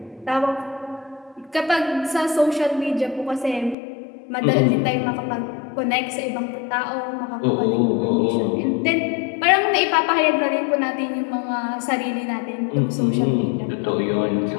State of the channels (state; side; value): drops out; right; at 3.8 s